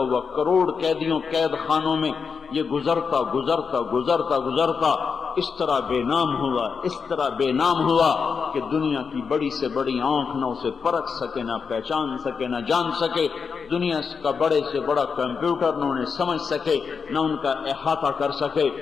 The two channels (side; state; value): right; quieter; 5.7 dB